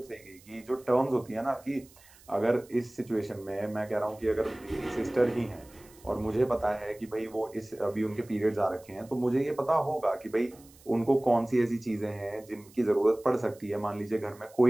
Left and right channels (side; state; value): right; noise; hiss, 25 dB below the sound